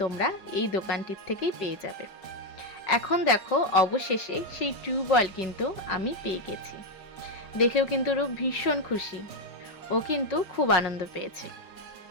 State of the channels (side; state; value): right; late; 5.5 ms